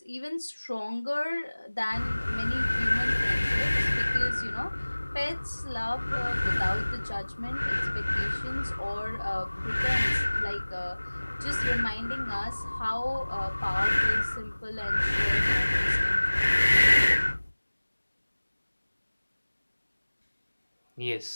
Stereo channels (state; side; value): inverted; both; correlation -1.00